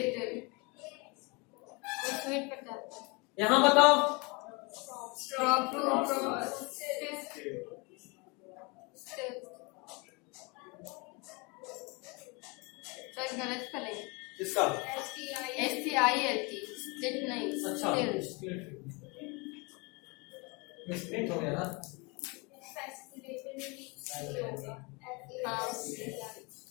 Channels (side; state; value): right; quieter; 29.0 dB